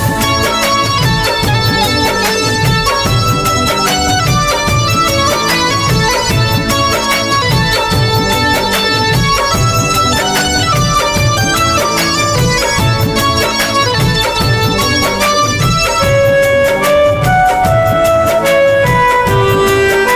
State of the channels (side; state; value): both; identical; correlation 1.00